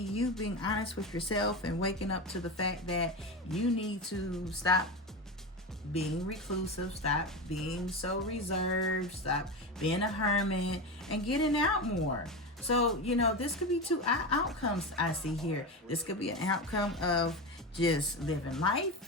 being honest with yourself and waking up to the fact that you need to stop being reclusive, stop being so reserved, stop being a hermit, and getting out more. So, this could be two outcomes I see here. This could be an outcome of just living life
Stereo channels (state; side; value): normal; both; correlation 0.20